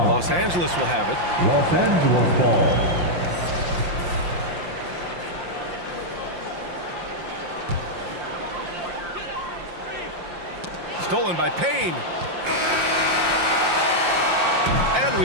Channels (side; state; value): left; late; 5.7 ms